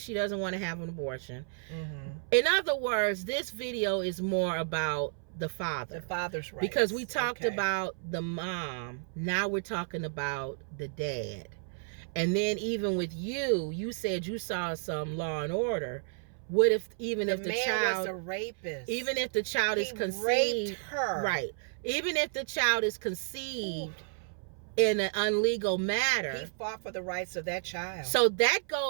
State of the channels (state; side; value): silent; left; 57 dB below the other